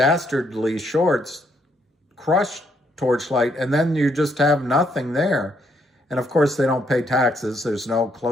shorts crushed Torchlight, and then you just have nothing there. And of course, they don't pay taxes. There's no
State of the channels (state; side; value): normal; both; correlation 0.73